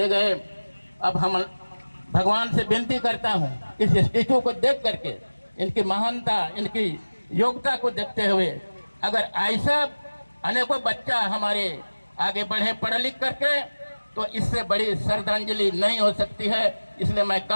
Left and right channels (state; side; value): inverted; both; correlation -1.00